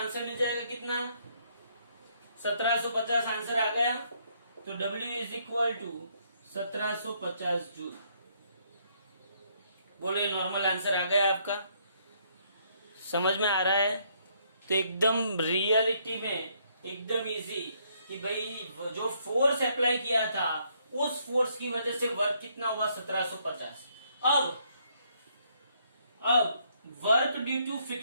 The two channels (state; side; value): inverted; both; correlation -0.70